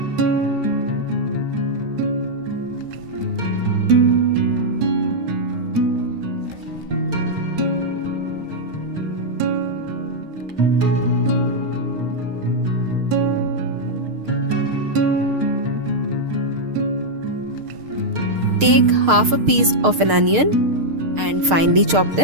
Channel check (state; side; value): late; left; 6.6 ms